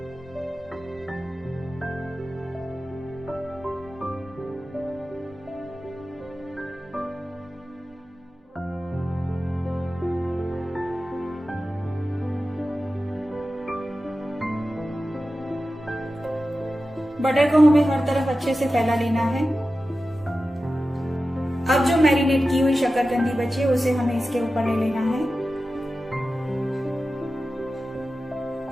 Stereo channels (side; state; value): both; normal; correlation 0.94